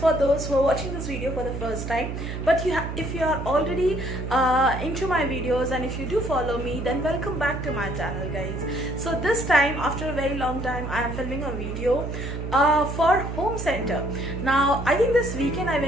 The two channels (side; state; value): right; noise; hum, 5 dB below the sound